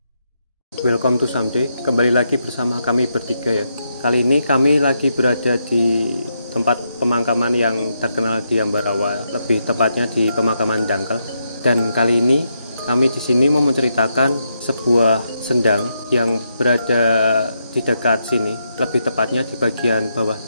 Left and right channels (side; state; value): both; inverted; correlation -0.81